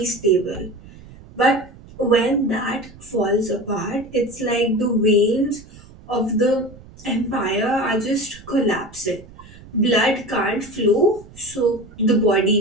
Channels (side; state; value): right; noise; rumble, 20 dB below the sound